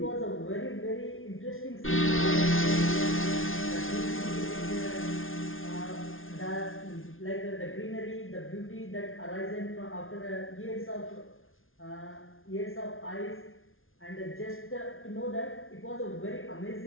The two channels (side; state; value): right; late; 0.59 ms